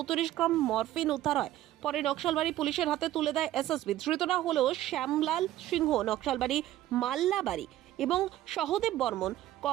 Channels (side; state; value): left; quieter; 14.0 dB